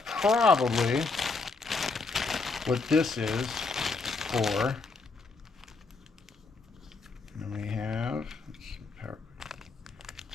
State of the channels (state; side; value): quieter; right; 4.1 dB